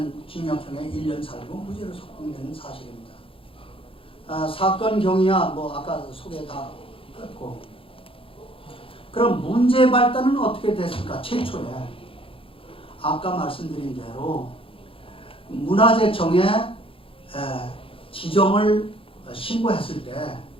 징역형에 1년 살고 무죄로 석방되는 사실입니다. 사건 경위야 뭐 아까 소개 다 했고, 그럼 문제 발단은 어떻게 됐을까? 최초에 아까 말씀드린 대로 문화재청에 지정을 신고했을 때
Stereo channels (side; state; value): right; late; 0.26 ms